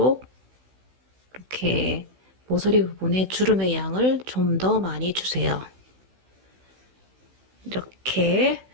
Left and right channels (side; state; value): left; late; 16 ms